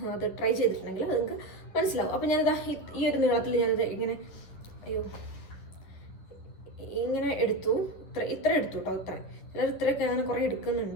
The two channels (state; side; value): late; right; 10 ms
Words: അത് ട്രൈ ചെയ്തിട്ടുണ്ടെങ്കിൽ അത് നിങ്ങൾക്ക് മനസ്സിലാവും. അപ്പം ഞാനിതാ ഈ ഒരു നീളത്തിൽ ഞാനത് ഇങ്ങനെ എടുത്തു. ഇത്ര എടുത്തു കേട്ടോ. ചിലർ ഇത്രയൊക്കെ അങ്ങനെ കുറേ